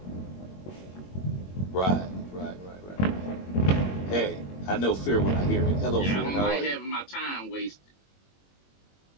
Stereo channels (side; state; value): right; late; 21 ms